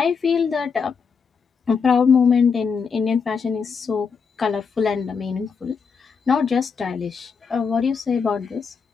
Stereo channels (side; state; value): right; quieter; 5.7 dB